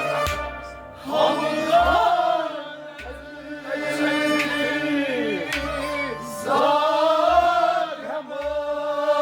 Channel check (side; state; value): both; identical; correlation 1.00